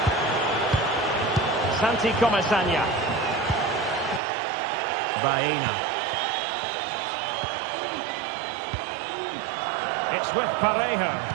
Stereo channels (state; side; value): drops out; left; at 4.2 s